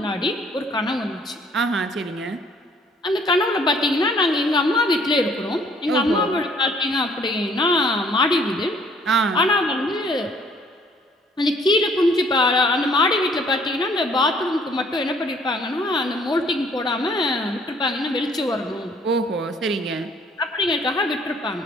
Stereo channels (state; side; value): normal; both; correlation 0.60